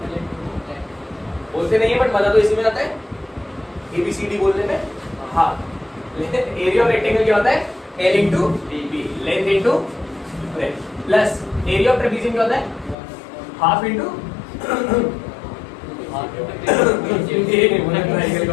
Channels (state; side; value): drops out; right; at 13.0 s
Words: बोलते नहीं है बट मजा तो इसी में आता है, ABCD बोलने में। हाँ, एरिया ऑफ रेक्टेंगल क्या होता है? L into b, length into breadth, plus area of trapezium क्या होता है? Half into